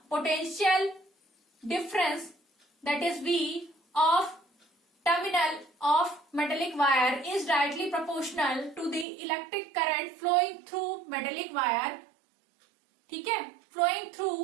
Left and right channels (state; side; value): drops out; left; at 9.1 s